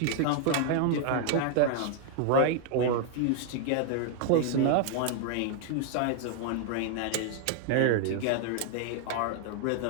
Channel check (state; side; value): different; both; correlation 0.00